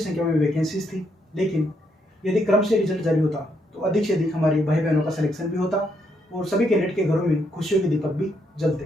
में वैकेंसीज थी, लेकिन यदि क्रम से रिजल्ट जारी होता तो अधिक से अधिक हमारे भाई बहनों का सिलेक्शन भी होता और सभी कैंडिडेट के घरों में खुशियों के दीपक भी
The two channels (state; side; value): normal; both; correlation 0.76